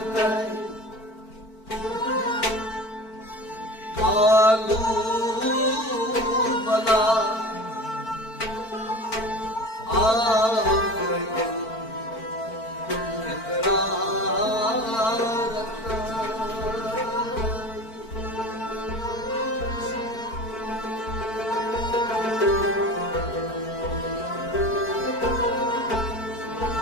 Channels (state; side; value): late; right; 4.5 ms